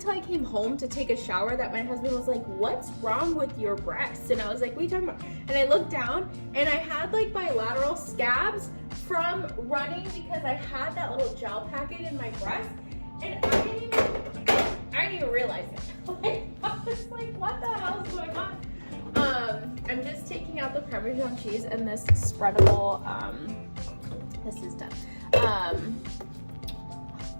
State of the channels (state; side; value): inverted; both; correlation -1.00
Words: I came home to take a shower that my husband was like, what's wrong with your breasts? And I was like, what are you talking about? And I looked down and I had like bilateral scabs from running because I had that little gel packet in my breast. And I didn't even realize it. Like, I was like, what the hell is going on? I'm just taking out the Parmesan cheese and this spreadable, this is done.